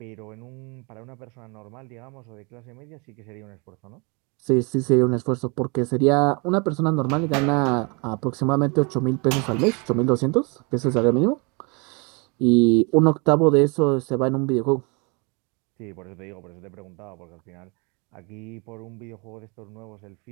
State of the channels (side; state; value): left; quieter; 31.5 dB